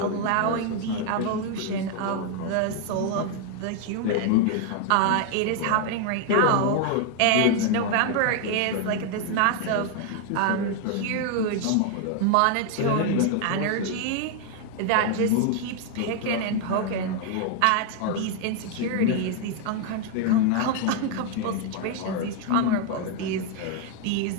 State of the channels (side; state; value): both; different; correlation 0.00